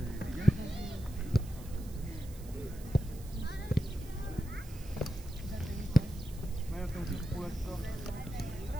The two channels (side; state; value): right; noise; hiss, 19 dB below the sound